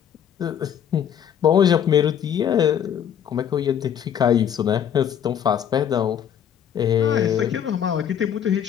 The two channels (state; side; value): quieter; right; 9.0 dB